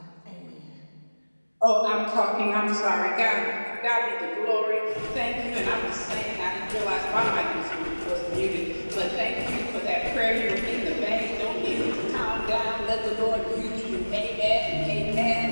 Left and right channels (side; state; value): both; inverted; correlation -1.00